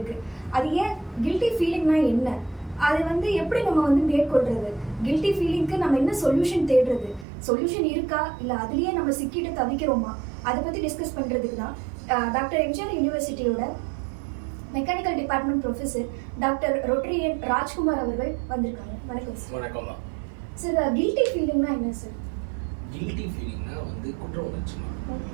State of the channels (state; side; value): drops out; left; at 7.2 s